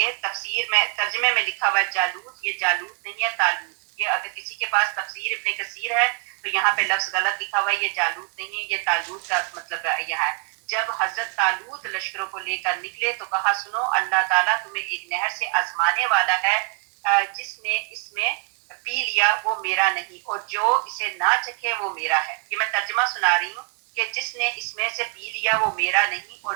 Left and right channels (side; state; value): left; quieter; 33.0 dB